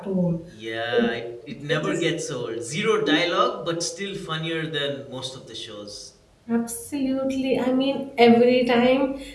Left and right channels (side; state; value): both; identical; correlation 1.00